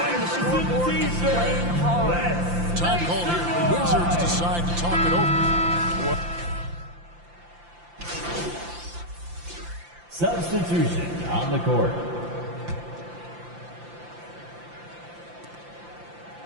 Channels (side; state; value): left; late; 5.8 ms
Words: the scoreboard and playing hard. Time called here. The Wizards decide to talk it over. Substitution on the court.